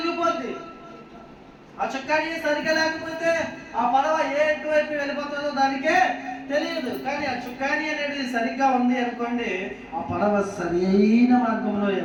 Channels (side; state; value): both; identical; correlation 1.00